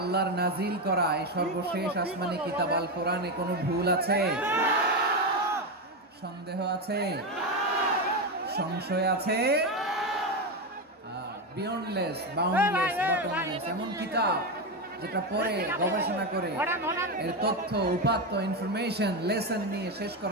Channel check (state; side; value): normal; both; correlation 0.12